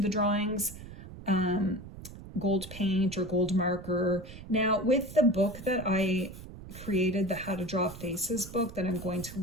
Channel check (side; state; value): right; noise; rumble, 14 dB below the sound